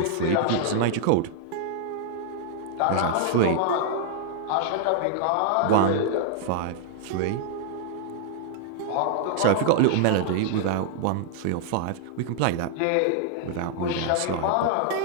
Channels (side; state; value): both; different; correlation -0.01